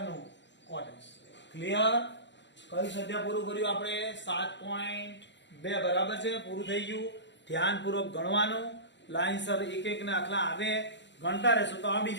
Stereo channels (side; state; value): right; late; 0.52 ms